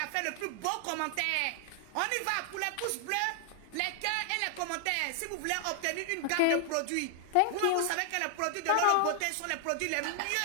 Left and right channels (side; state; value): both; different; correlation 0.00